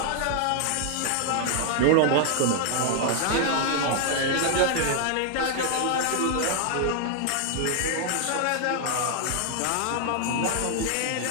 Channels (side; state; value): both; different; correlation 0.00